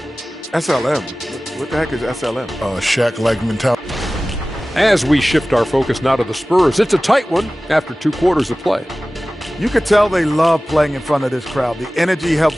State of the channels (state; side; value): normal; both; correlation 0.97